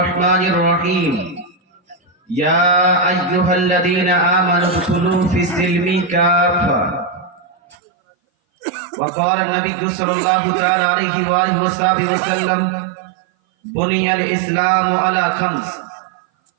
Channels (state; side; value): drops out; left; at 7.8 s